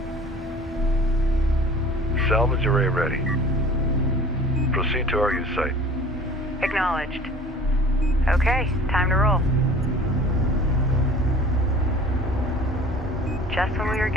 Salvage array ready. Proceed to RU site. Acknowledged. Okay, time to roll. Just when we were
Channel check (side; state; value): both; normal; correlation 0.45